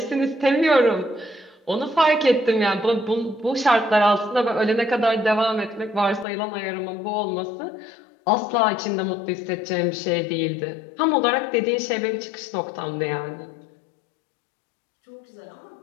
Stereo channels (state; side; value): drops out; right; at 6.2 s